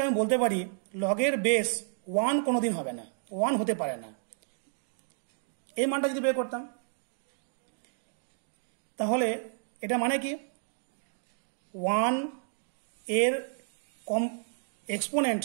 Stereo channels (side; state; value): left; silent; digital silence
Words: আমি বলতে পারি লগের বেস 1 কোনোদিন হবে না, 1 হতে পারে না। এই মানটা যদি বের করতাম তাহলে এটা মানে কি? 1 এর এক্সপোনেন্ট